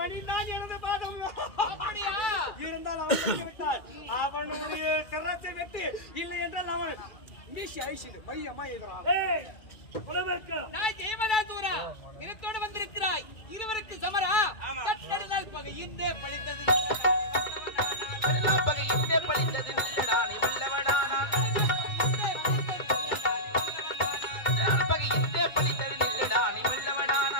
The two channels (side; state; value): right; late; 2.2 ms